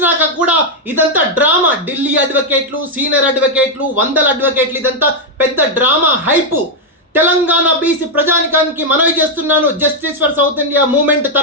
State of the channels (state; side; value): normal; both; correlation 0.01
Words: కూడా ఇదంతా డ్రామా. ఢిల్లీ అడ్వకేట్లు, సీనియర్ అడ్వకేట్లు, వందల అడ్వకేట్లు, ఇదంతా పెద్ద డ్రామా హైపు. తెలంగాణ బీసీ ప్రజానికానికి మనవి చేస్తున్నాను, justice for south India movement